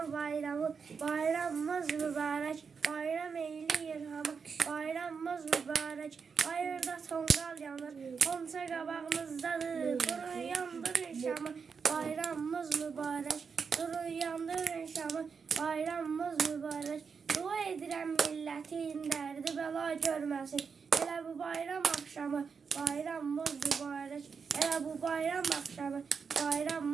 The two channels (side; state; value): left; quieter; 5.8 dB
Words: bayramı, bayramımız mübarək, bayram eyləyir hamı, bayramımız mübarək. Bayırda tonqal yanır, qonça qabağımızdadır, durun yandırın şamı, bayramımız mübarək. Durun yandırın şamı, bayramımız mübarək. Dua edirəm millətin dərdi bəla görməsin. Elə bu bayram axşamı, bayramımız mübarək. Elə bu bayram axşamı,